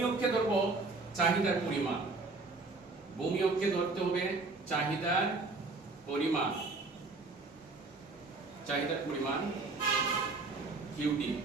অক্ষে ধরব চাহিদার পরিমাণ। ভূমি অক্ষে ধরতে হবে চাহিদার পরিমাণ, চাহিদার পরিমাণ কিউটি।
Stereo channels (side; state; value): left; quieter; 3.6 dB